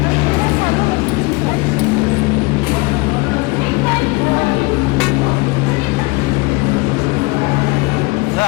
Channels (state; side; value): quieter; right; 24.8 dB